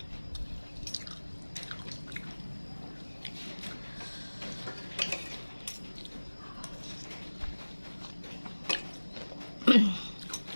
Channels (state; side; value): inverted; both; correlation -1.00